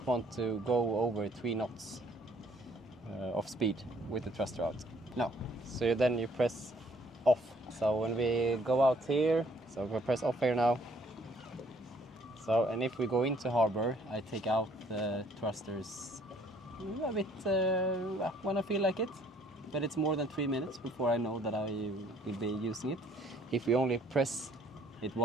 want to go over 3 knots of speed with the thruster out. No. So then you press off. So when we go out here, so we press off here now. So, and if we go into harbor, I take out the thrusters a bit when I feel like it. But it's more than 3 minutes before I know that I will be using it. If we only press it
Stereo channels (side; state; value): both; normal; correlation 0.61